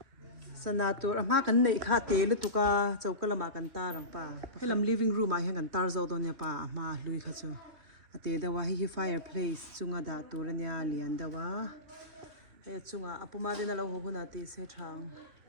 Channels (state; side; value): late; left; 2.9 ms